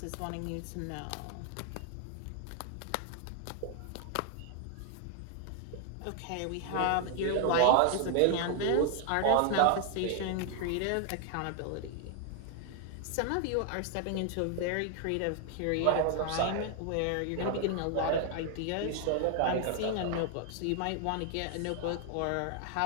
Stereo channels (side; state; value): both; different; correlation 0.00